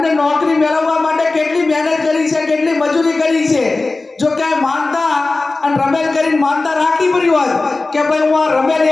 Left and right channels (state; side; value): quieter; right; 3.4 dB